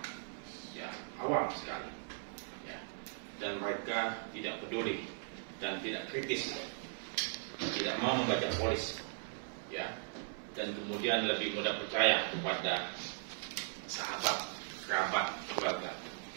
ya, awam sekali, ya, dan mereka tidak peduli dan tidak kritis, tidak mau membaca polis, ya, dan kemudian lebih mudah percaya kepada sahabat, kerabat, keluarga,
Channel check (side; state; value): left; silent; 52 dB below the other